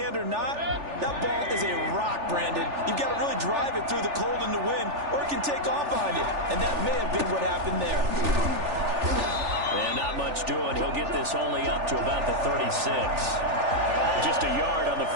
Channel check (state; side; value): late; left; 3.4 ms